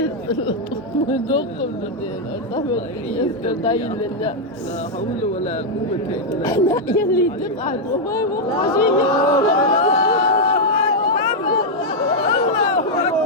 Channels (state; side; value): normal; both; correlation -0.02